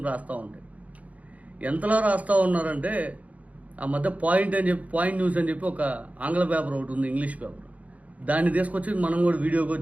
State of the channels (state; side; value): late; left; 0.069 ms